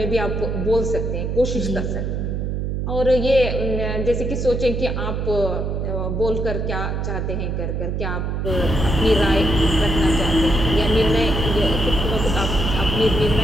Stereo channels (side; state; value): right; noise; hum, 2 dB below the sound